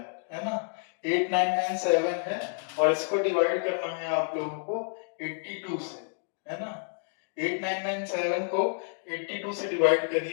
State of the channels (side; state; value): right; silent; 58 dB below the other